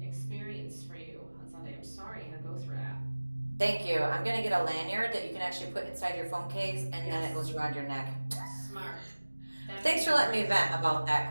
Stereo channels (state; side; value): inverted; both; correlation -1.00